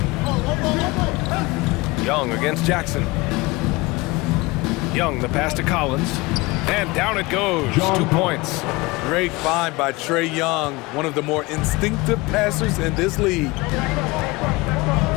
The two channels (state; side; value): quieter; right; 23.1 dB